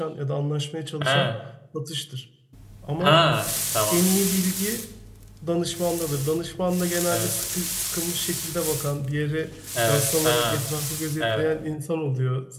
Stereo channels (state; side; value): identical; both; correlation 1.00